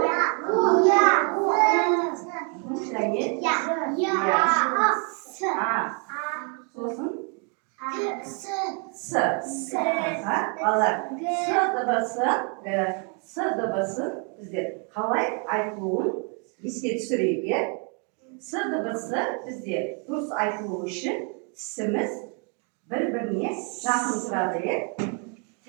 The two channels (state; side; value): quieter; left; 37.9 dB